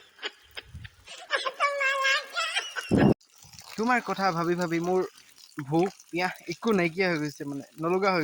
তোমাৰ কথা ভাবি ভাবি মোৰ ভোক পিয়াহ একো নাইকিয়া হৈ গৈছে মানে নলগা হৈ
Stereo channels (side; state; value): both; identical; correlation 1.00